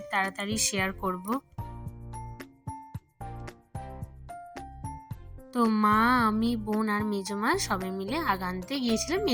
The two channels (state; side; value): identical; both; correlation 1.00